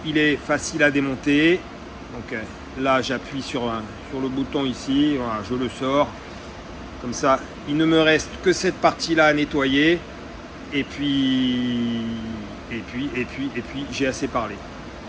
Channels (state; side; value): identical; both; correlation 1.00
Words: il est facile à démonter. Donc là, j'appuie sur le bouton ici, voilà, je le sors. Comme ça, il ne me reste que cette partie-là à nettoyer. Et puis, j'ai assez parlé.